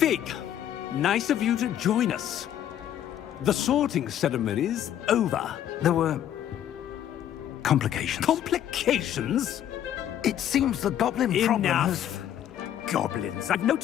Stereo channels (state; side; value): quieter; right; 10.7 dB